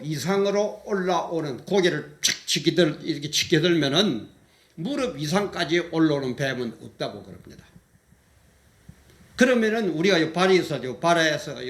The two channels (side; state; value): both; identical; correlation 1.00